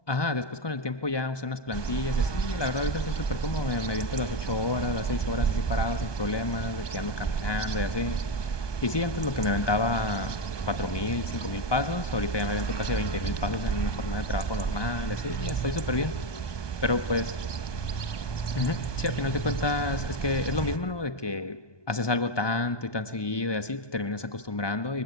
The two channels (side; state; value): right; late; 1.2 ms